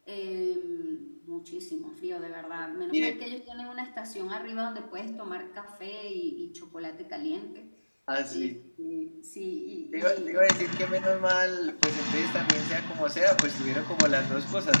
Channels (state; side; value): inverted; both; correlation -1.00